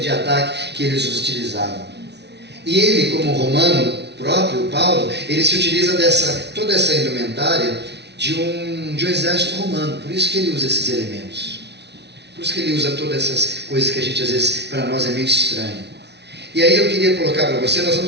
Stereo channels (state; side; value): late; left; 0.50 ms